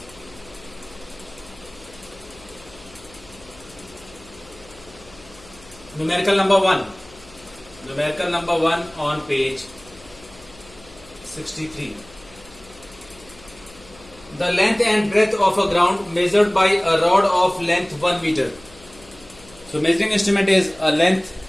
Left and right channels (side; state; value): left; noise; hum, 23 dB below the sound